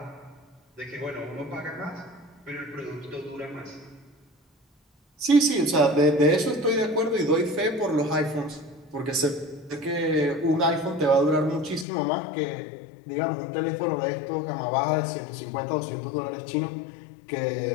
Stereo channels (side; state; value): right; drops out; at 11.9 s